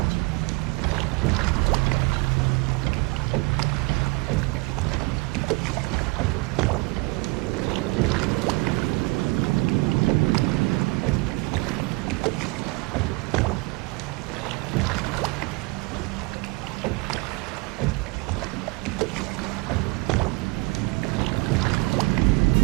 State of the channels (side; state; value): left; quieter; 25.6 dB